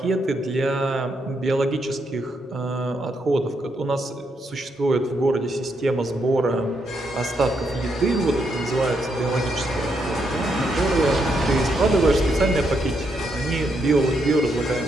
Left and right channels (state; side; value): normal; both; correlation 0.79